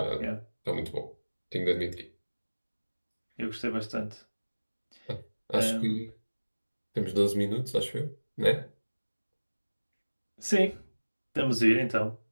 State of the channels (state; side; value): inverted; both; correlation -1.00